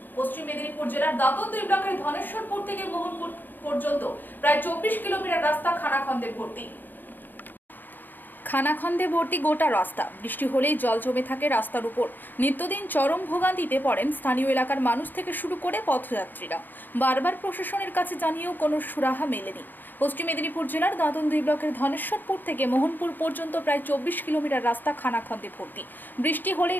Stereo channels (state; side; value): late; right; 0.090 ms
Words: পশ্চিম মেদিনীপুর জেলার দাঁতন 2 ব্লকের ধনেশ্বরপুর থেকে মোহনপুর পর্যন্ত প্রায় 24 কিলোমিটার রাস্তা খানাখন্দে ভর্তি। খানাখন্দে ভর্তি গোটা রাস্তা, বৃষ্টি হলেই জল জমে থাকে রাস্তার উপর। নিত্যদিন চরম ভোগান্তিতে পড়েন স্থানীয় এলাকার মানুষ থেকে শুরু করে পথযাত্রীরা। বারবার প্রশাসনের কাছে জানিয়েও কোনো সুরাহা মেলেনি। পশ্চিম মেদিনীপুর জেলার দাঁতন 2 ব্লকের ধনেশ্বরপুর থেকে মোহনপুর পর্যন্ত প্রায় 24 কিলোমিটার রাস্তা খানাখন্দে ভর্তি। বৃষ্টি হলেই